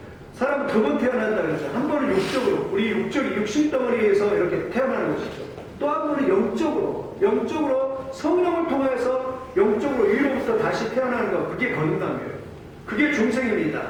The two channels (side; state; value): both; identical; correlation 1.00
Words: 사람은 두 번 태어난다 그랬죠. 한 번은 육적으로, 우리 육신덩어리에서 이렇게 태어나는 것이죠. 또 한 번은 영적으로 성령을 통해서 영적으로 위로부터 다시 태어나는 것, 그게 거듭남이에요. 그게 중생입니다.